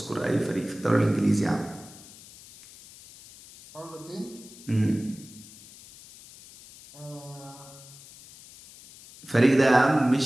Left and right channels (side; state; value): left; noise; hiss, 20 dB below the sound